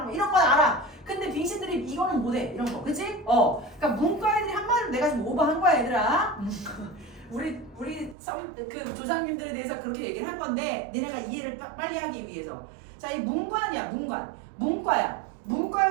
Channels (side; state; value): left; drops out; at 8.2 s